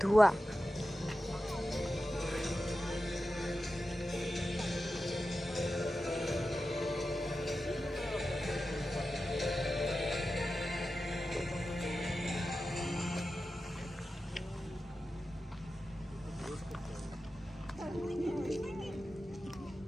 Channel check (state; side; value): normal; both; correlation 0.92